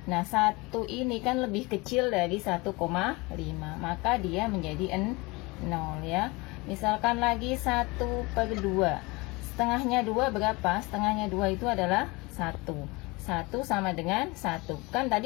Nah 1 ini kan lebih kecil dari 1,5, maka dia menjadi 0 ya. Misalkan lagi 1/2, setengahnya 2 berapa? Setengahnya 2 itu adalah 1 sama dengan 1. Kan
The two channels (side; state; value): right; quieter; 24.6 dB